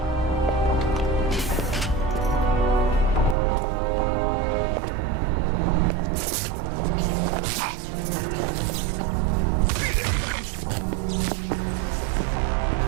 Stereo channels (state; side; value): drops out; left; at 3.4 s